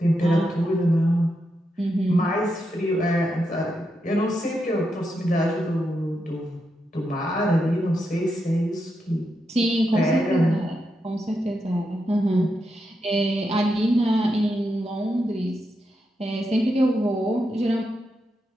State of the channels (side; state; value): both; normal; correlation 0.85